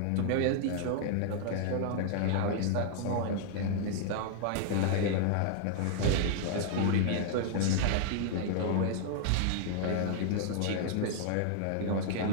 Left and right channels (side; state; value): both; different; correlation 0.00